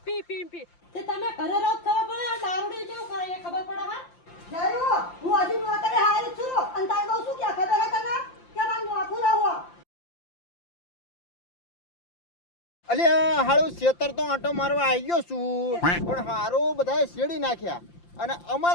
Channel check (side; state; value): right; late; 5.8 ms